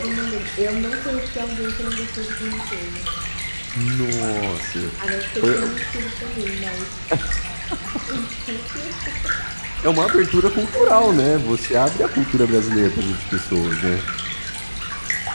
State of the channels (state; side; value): inverted; both; correlation -1.00